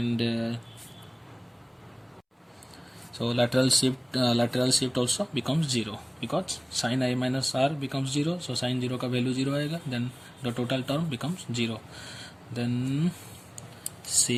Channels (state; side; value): identical; both; correlation 1.00